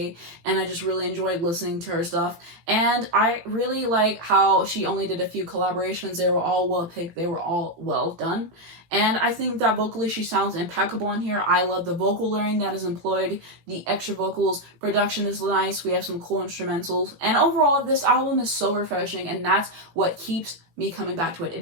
and I just really enjoyed listening to her stuff. And I really like how she only did a few collaborations. They were all well picked. They were all well done. And I think that vocally she sounds impeccable in here. I love the vocal layering that is employed, the extra vocals, production is nice, we have some cool instrumentals. And overall, this album is so refreshing and that's what keeps me coming back to it. It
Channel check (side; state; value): left; late; 18 ms